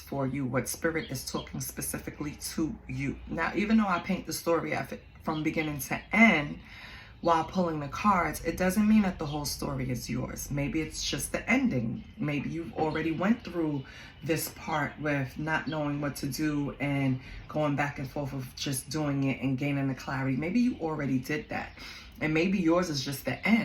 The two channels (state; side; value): identical; both; correlation 1.00